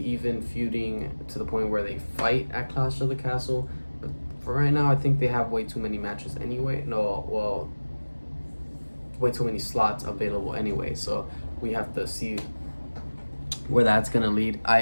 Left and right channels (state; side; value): inverted; both; correlation -1.00